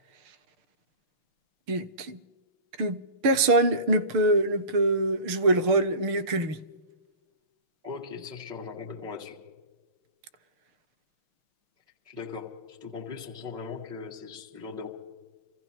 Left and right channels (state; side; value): late; left; 6.6 ms